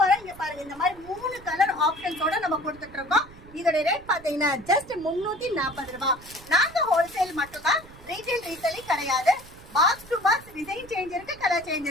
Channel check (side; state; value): right; noise; rumble, 20 dB below the sound